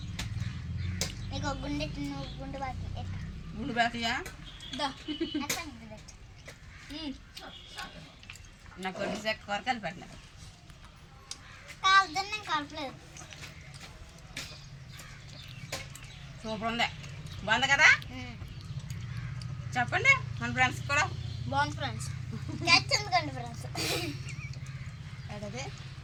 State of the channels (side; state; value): both; identical; correlation 1.00